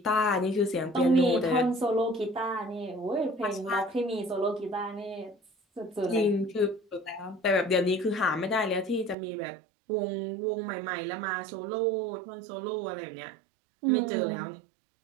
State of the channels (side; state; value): left; drops out; at 9.2 s